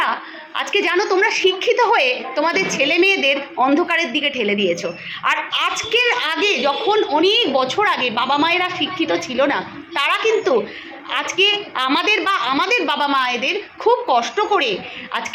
আজকে জানো তোমরা শিক্ষিত হয়ে তোমাদের ছেলে মেয়েদের অন্ধকারের দিকে ঠেলে দিয়েছো। আর আজকের আগে যখন অনেক বছর আগে বাবা মায়েরা শিক্ষিত ছিল না, তারা কিন্তু আজকে আমাদের বাবা মায়েদের খুব কষ্ট করে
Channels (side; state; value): both; identical; correlation 1.00